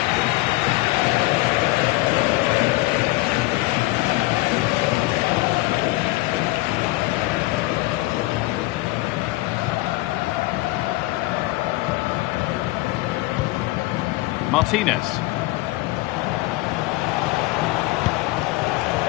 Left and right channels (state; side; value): quieter; right; 20.3 dB